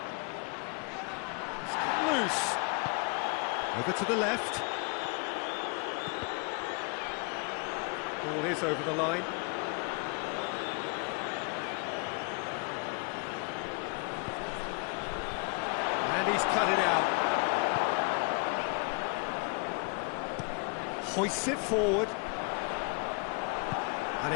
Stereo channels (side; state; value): right; quieter; 33.7 dB